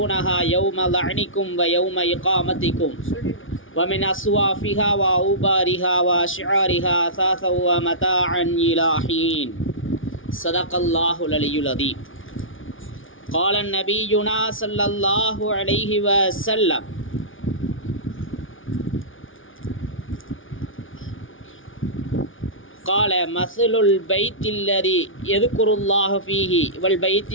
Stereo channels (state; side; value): late; right; 0.57 ms